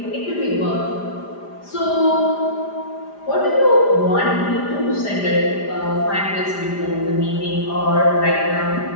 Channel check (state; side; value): late; right; 5.0 ms